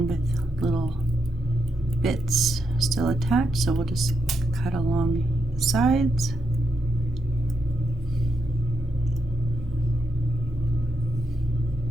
with little bits still attached, so we'll just cut along the sides.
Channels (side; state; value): both; normal; correlation 0.82